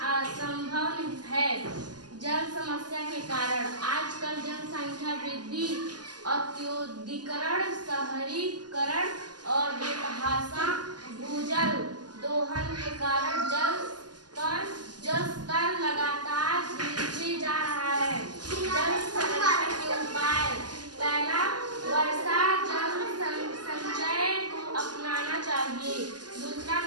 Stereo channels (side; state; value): left; late; 0.70 ms